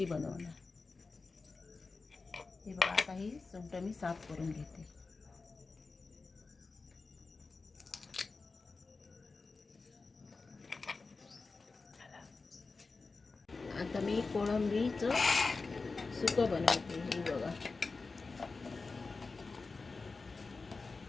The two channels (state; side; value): quieter; right; 4.1 dB